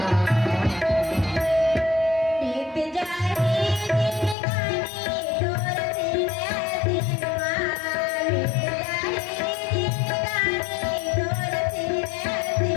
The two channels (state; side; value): drops out; right; at 4.4 s